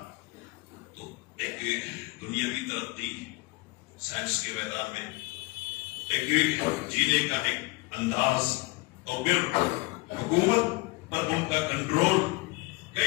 تو ایک دنیاوی ترقی سائنس کے میدان میں، ایک جینے کا ایک انداز، اور پھر حکومت پر ان کا کنٹرول.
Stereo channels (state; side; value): quieter; right; 23.6 dB